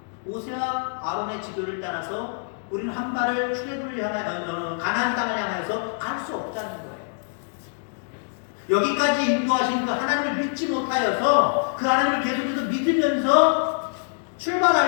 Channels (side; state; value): right; silent; digital silence